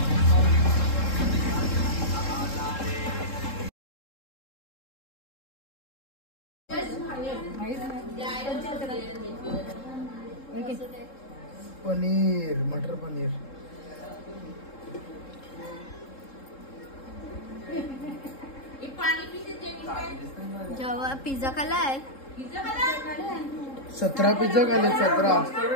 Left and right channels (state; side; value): late; right; 3.7 ms